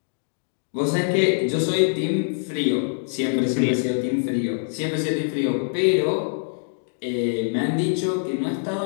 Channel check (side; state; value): right; silent; digital silence